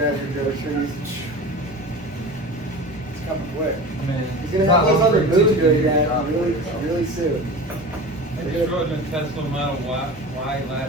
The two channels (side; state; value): both; normal; correlation 0.33